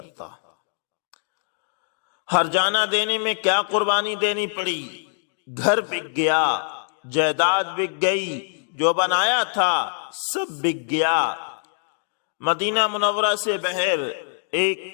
ہرجانہ دینے میں کیا قربانی دینی پڑی؟ گھر بک گیا، جائیداد بک گئی، جو بنایا تھا سب بک گیا۔ مدینہ منورہ سے بہر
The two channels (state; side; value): silent; right; digital silence